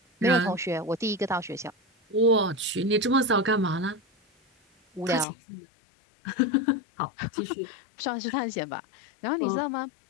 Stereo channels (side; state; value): right; drops out; at 5.2 s